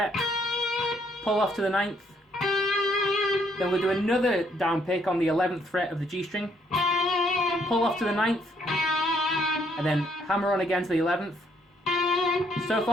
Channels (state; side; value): normal; both; correlation 0.69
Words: pull off to the 9th, then we'll do another down pick on the 11th fret of the G string, pull off to the 9th, and then hammer on again to the 11th. So